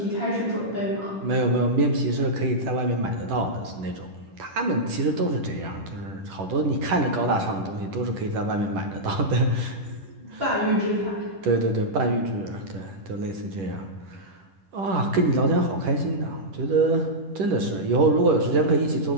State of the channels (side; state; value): left; late; 10 ms